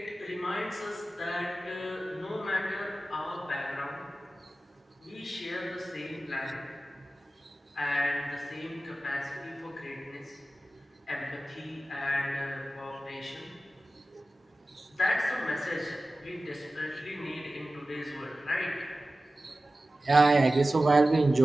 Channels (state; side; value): normal; both; correlation 0.96